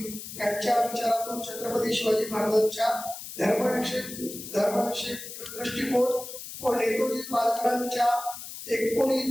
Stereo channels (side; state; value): left; noise; hiss, 11 dB below the sound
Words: त्यांच्या विचारातून छत्रपती शिवाजी महाराजांच्या धर्मविषयक दृष्टिकोन व नेताजी पालकरांच्या 19